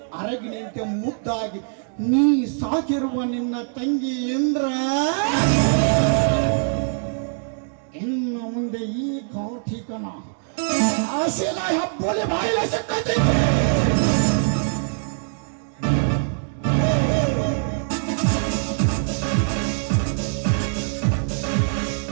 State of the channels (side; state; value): left; silent; digital silence